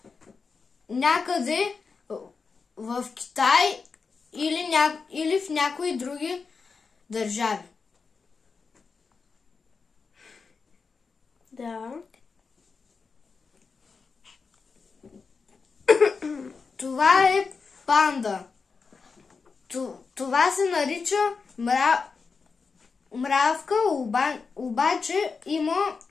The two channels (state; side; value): quieter; right; 4.9 dB